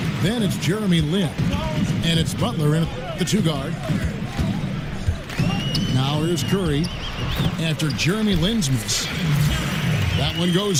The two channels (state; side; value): identical; both; correlation 1.00